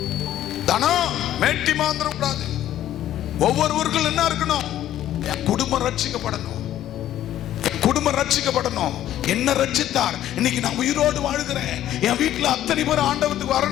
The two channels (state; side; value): quieter; right; 12.3 dB